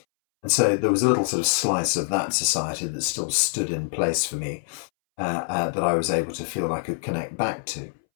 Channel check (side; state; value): right; silent; 62 dB below the other